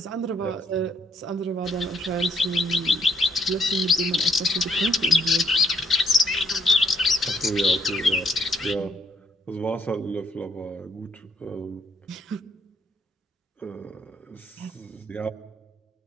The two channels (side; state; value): both; normal; correlation 0.72